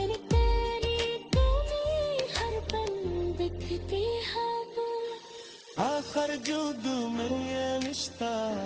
तेरी कमी हर पल दिखती है वो। आखिर जुदू में ये रिश्ता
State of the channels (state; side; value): identical; both; correlation 1.00